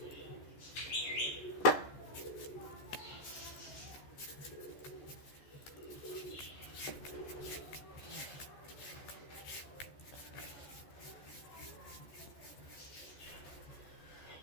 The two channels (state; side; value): late; right; 14 ms